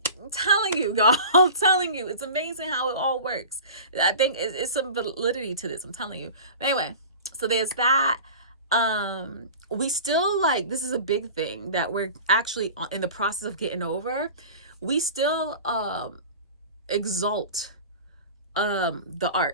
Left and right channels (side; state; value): both; inverted; correlation -0.37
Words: telling you, y'all. I'm telling you, it's amazing how it all works. I think it's some validity to this. I'm telling you. But anyway, so there's that. We still, like, this is a big thing that we're actually in the process of getting over. We still exalt the